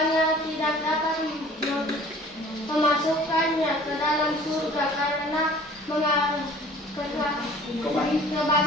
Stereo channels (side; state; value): both; normal; correlation 0.49